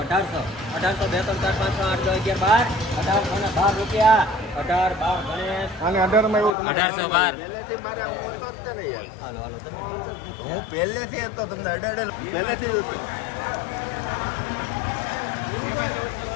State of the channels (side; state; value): right; drops out; at 6.6 s